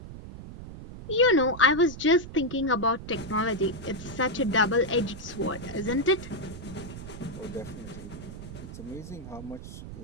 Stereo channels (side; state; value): right; noise; rumble, 12 dB below the sound